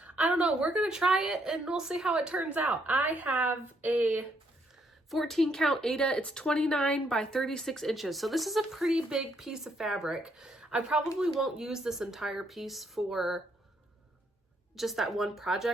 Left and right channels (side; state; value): both; normal; correlation 0.73